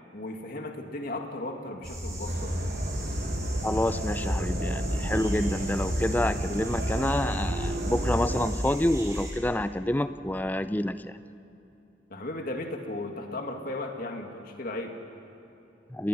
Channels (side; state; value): both; normal; correlation 0.82